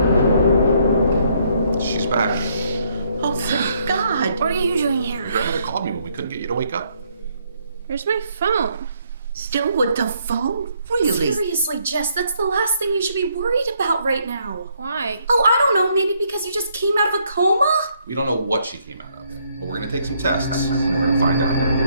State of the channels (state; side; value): inverted; both; correlation -0.70